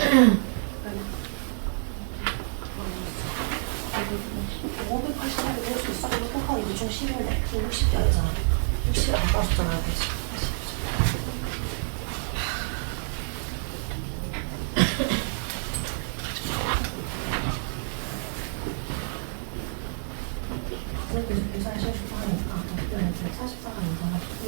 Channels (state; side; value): silent; left; 59 dB below the other